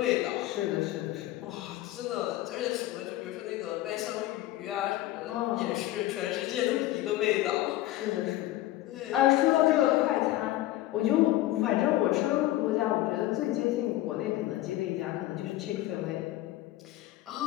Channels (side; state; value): right; quieter; 15.6 dB